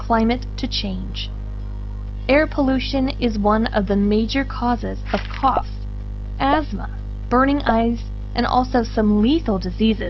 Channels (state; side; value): identical; both; correlation 1.00